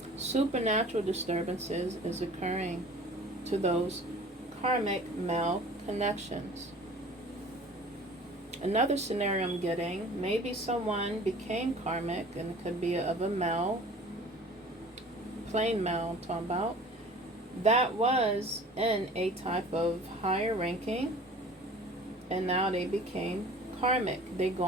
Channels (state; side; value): normal; both; correlation 0.45